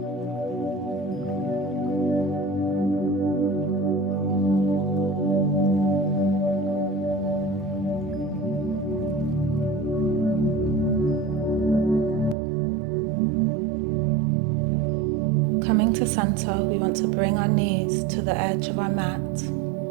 Coming to center, we want to bring our knees to the edge of our mat.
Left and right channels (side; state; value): left; drops out; at 12.4 s